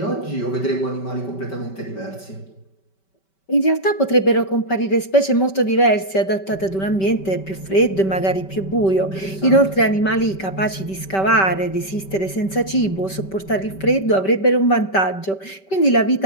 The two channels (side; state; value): right; late; 5.2 ms